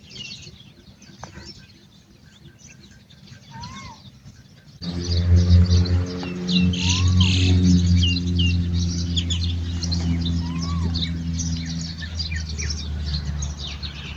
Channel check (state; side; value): identical; both; correlation 1.00